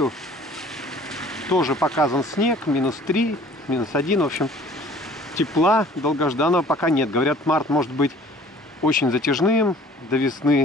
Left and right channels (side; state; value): both; normal; correlation 0.51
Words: тоже показан снег, -3, -1, в общем, тепла долгожданного пока нет. Говорят, март может быть очень затяжным до